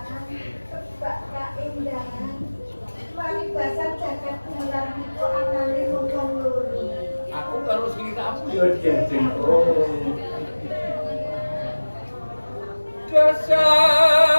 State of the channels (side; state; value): both; inverted; correlation -1.00